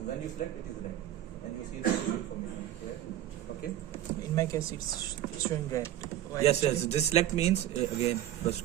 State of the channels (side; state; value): left; quieter; 12.5 dB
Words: when you select, it is red, and you see the information. Okay. in my case it's showing red. Why Yes. actually? This select means again.